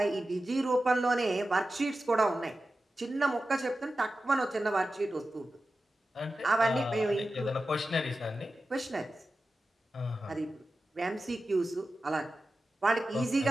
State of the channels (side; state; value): both; normal; correlation 0.93